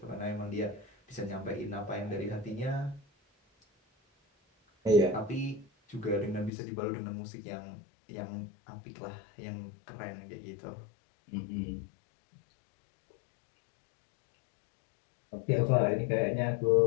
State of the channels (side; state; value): right; drops out; at 6.5 s